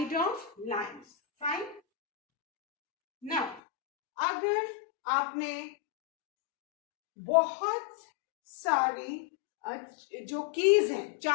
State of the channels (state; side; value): drops out; right; at 3.6 s